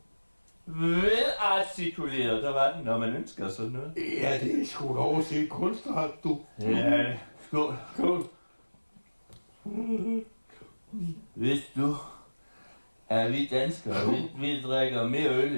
der var den, når man ønsker sådan noget. Ja, det er sgu da overset kunstart, du. Ja, skål. Hvis du er vi danskere, vi drikker mere øl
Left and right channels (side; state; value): both; inverted; correlation -1.00